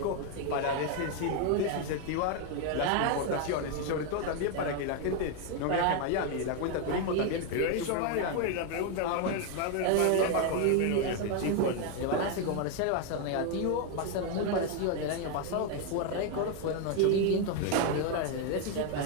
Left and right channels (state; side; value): different; both; correlation 0.01